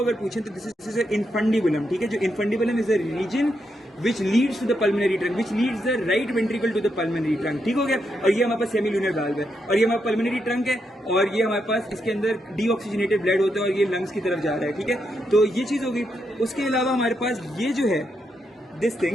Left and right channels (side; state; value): both; normal; correlation 0.81